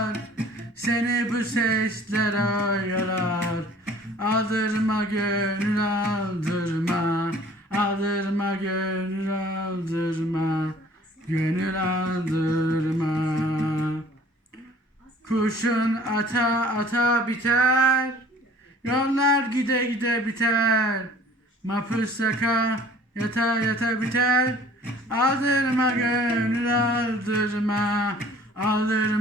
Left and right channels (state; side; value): normal; both; correlation 0.51